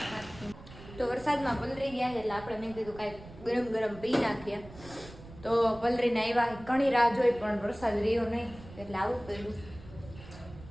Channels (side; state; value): right; noise; rumble, 17 dB below the sound